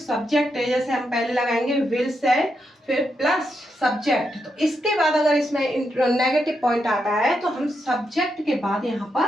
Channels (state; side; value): normal; both; correlation 0.83